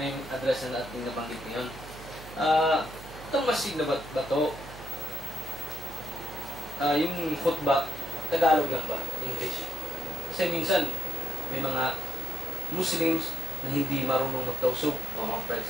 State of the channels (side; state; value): right; noise; hum, 15 dB below the sound